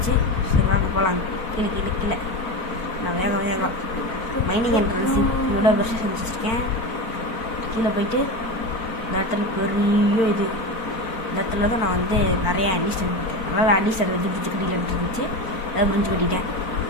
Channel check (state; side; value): late; right; 4.4 ms